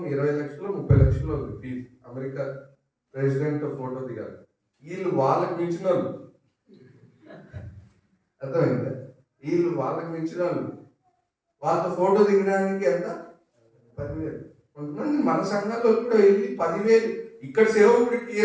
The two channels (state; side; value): identical; both; correlation 1.00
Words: 20 లక్షలు 30 లక్షలు ఉంది ఫీజు. అమెరికా ప్రెసిడెంట్ ఫోటో దిగాలి. వీళ్ళు వాళ్ళకి మించిన వాళ్ళు. అర్థమైందా? వీళ్ళు వాళ్ళకి మించిన వాళ్ళు. వాళ్ళతో ఫోటో దిగడానికి ఎంత? 10,000. కొంతమంది మన సంఘాల్లో కూడా వెళ్ళి 10,000. ఇక్కడ సేవకుడికి